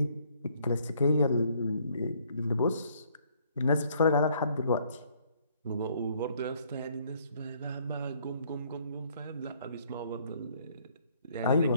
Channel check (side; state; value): both; inverted; correlation -0.64